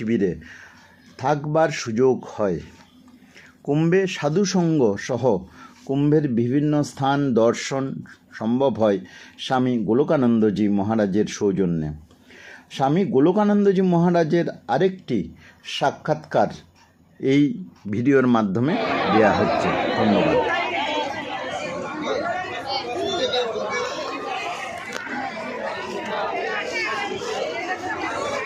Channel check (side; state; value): both; identical; correlation 1.00